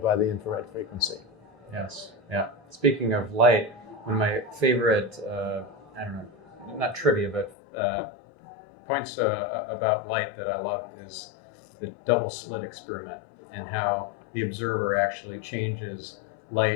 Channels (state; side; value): drops out; right; at 7.6 s